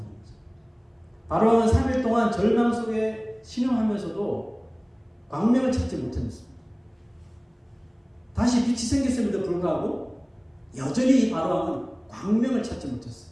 바로왕은 3일 동안 절망 속에 신음하면서도 광명을 찾지 못했습니다. 다시 빛이 생겼음에도 불구하고 여전히 이 바로왕은 광명을 찾지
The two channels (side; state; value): both; identical; correlation 1.00